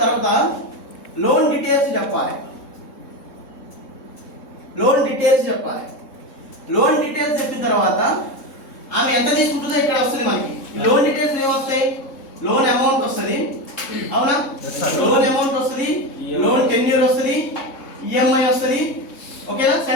తర్వాత లోన్ డీటెయిల్స్ చెప్పాలి. లోన్ డీటెయిల్స్ చెప్పాలి. లోన్ డీటెయిల్స్ చెప్పిన తర్వాత ఆమె ఎంత తీసుకుంటుందో ఇక్కడ వస్తుంది మనకి. లోన్ డీటెయిల్స్ ఏమొస్తాయి? లోన్ అమౌంట్ వస్తుంది, అవునా? లోన్ అమౌంట్ వస్తుంది, లోన్ టెన్యూర్ వస్తుంది, ఈఎంఐ వస్తుంది. ఓకేనా?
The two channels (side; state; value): right; late; 3.7 ms